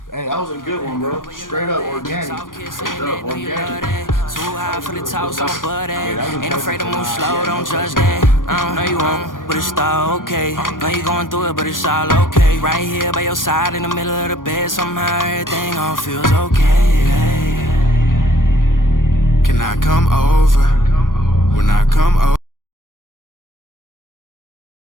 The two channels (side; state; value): right; late; 0.90 ms